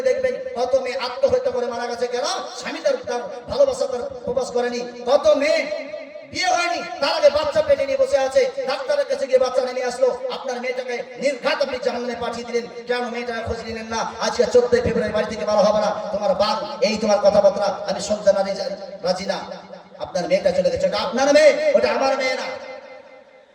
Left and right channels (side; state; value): both; identical; correlation 1.00